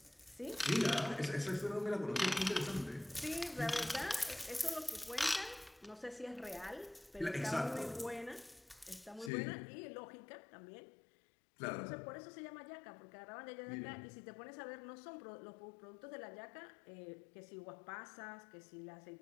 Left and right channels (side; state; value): right; drops out; at 9.3 s